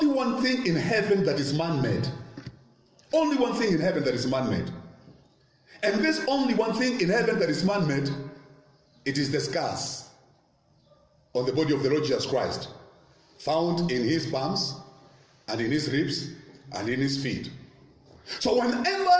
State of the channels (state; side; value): identical; both; correlation 1.00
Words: one thing in heaven that is man-made. Only one thing in heaven that is man-made. And this only one thing in heaven that is man-made, it is the scars on the body of the Lord Jesus Christ, found in his palms and in his ribs and in his feet. So whenever